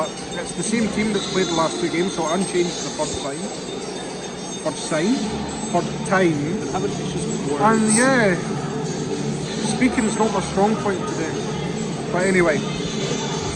it's the same team that's played the last 2 games, so unchanged for the first time. Having issues with words. And yeah, speaking is not my strong point today. But anyway,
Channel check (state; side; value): identical; both; correlation 1.00